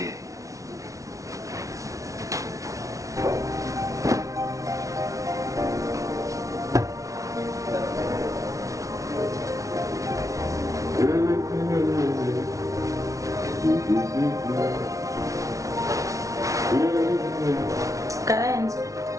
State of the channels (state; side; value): late; left; 0.16 ms